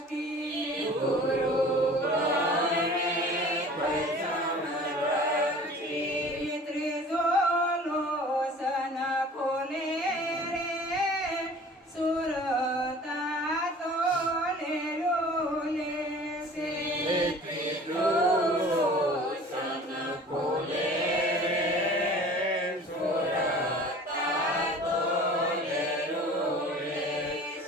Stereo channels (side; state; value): both; normal; correlation 0.45